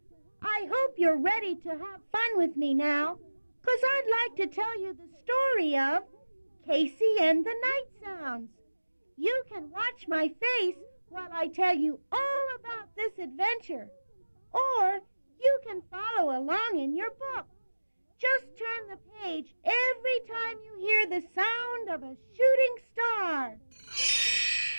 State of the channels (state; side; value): inverted; both; correlation -1.00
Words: I hope you're ready to have fun with me now, 'cause I'd like to tell you the story of Casey and the Night Sounds. You can watch my face while I tell you all about this adventure, or you can follow along in your book. Just turn the page every time you hear the sound of a shooting star.